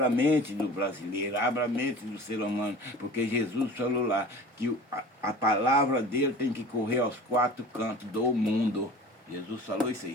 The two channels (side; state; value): both; normal; correlation 0.40